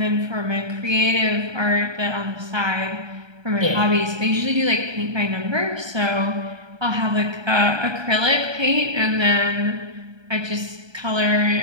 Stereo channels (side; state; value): left; late; 1.3 ms